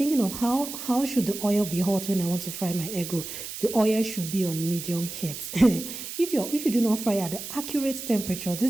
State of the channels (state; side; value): noise; right; hiss, 9 dB below the sound